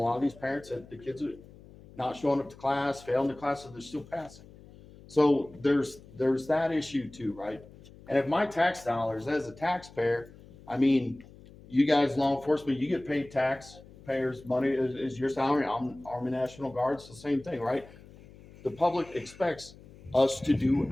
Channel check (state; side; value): noise; left; hum, 21 dB below the sound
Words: of these parents said the kids are not showing up to class, failing the class, and they're still passing. So there's that issue too, right? And if my tax dollars as a taxpayer, I mean, you guys, law enforcement, you get paid taxpayers' money is your salary. I'm Army National Guard, it's the same thing, right? The public expects us to do